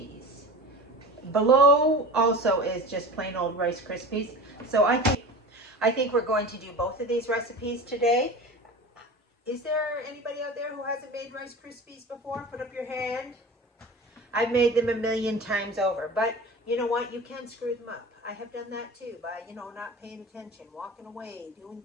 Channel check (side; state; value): both; normal; correlation 0.34